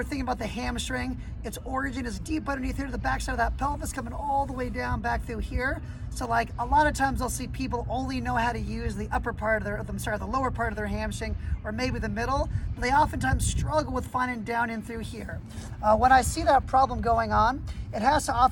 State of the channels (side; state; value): both; identical; correlation 1.00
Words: thinking about the hamstring. Its origin is deep underneath here to the backside of that pelvis, coming all the way down back through here. So like a lot of times I'll see people only know how to use the upper part of the lower part of their hamstring, or maybe the middle, but they oftentimes struggle with finding down in through here. When I see that problem going on, it has to